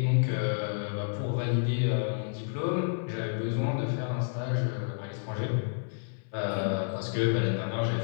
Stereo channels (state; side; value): silent; right; 58 dB below the other